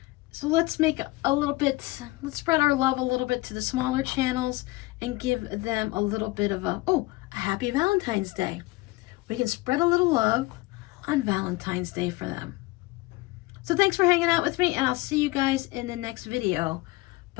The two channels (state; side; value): quieter; right; 20.7 dB